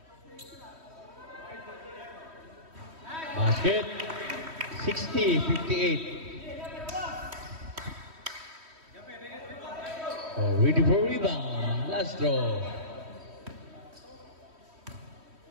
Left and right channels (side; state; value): left; late; 3.1 ms